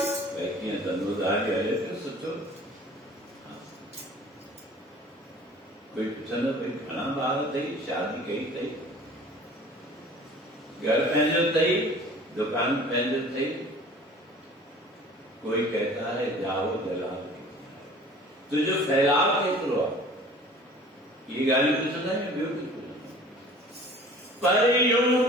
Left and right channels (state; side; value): normal; both; correlation 0.46